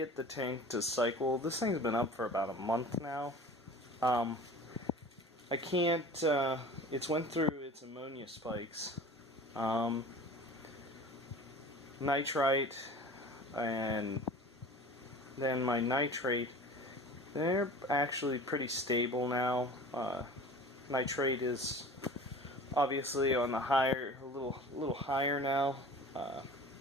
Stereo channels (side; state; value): both; normal; correlation 0.40